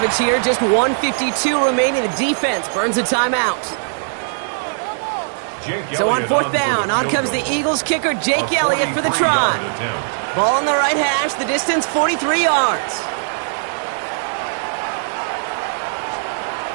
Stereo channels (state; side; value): silent; left; digital silence